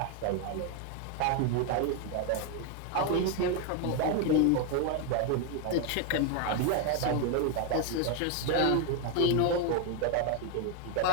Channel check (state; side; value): different; both; correlation 0.01